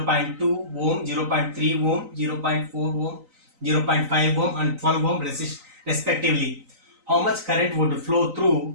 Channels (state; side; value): late; left; 3.9 ms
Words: ohm, 0.3 ohm, 0.4 ohm, 0.5 ohm and 12 ohm respectively. How much current would flow